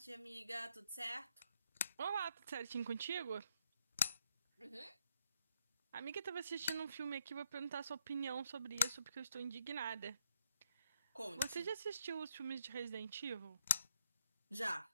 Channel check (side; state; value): both; inverted; correlation -0.74